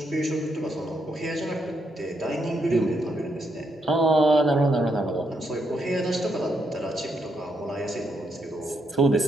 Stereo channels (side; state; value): both; normal; correlation 0.78